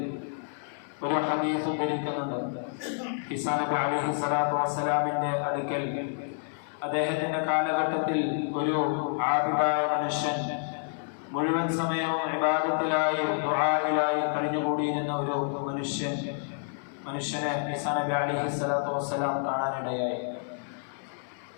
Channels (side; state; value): right; silent; 58 dB below the other